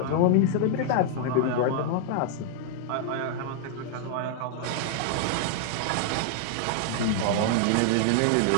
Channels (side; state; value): both; different; correlation 0.00